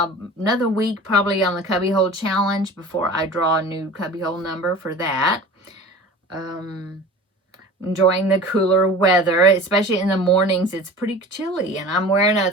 week probably on the cubbyhole challenge before I draw a new cubbyhole number for that. Enjoying the cooler weather, especially in the mornings. It's pretty chilly, and I'm wearing a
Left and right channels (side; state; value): both; normal; correlation 0.39